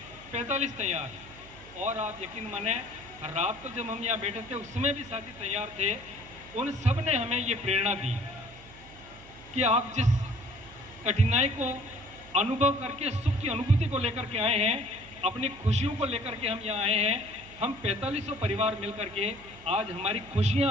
45 तैयार। और आप यकीन माने, रात को जब हम यहाँ बैठे थे उसमें भी साथी तैयार थे। उन सब ने हमें ये प्रेरणा दी कि आप जिस कठिनाई को अनुभव करके सुख की अनुभूति को लेकर के आए हैं, अपनी खुशियों को लेकर के हम यहाँ आए हैं। हम 4500 परिवार मिलकर के आज हमारी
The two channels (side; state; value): right; noise; hum, 21 dB below the sound